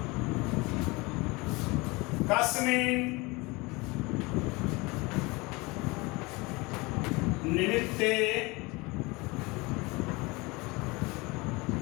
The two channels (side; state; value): right; quieter; 24.6 dB